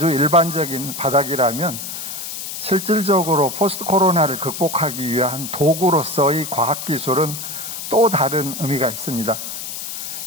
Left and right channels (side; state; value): left; noise; hiss, 7 dB below the sound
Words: 일반적인 바닥이라면 실질적으로 포스트 코로나를 극복하기 위한 도구로서의 과학기술은 또 다른 의미가 있습니다.